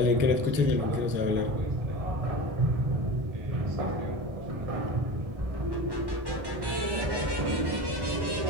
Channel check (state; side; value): late; left; 1.1 ms